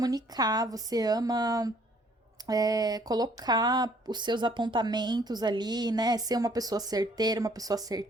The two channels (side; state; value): both; normal; correlation 0.61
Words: você ama colocar os seus apontamentos ali, né? Ser uma pessoa certeira, uma pessoa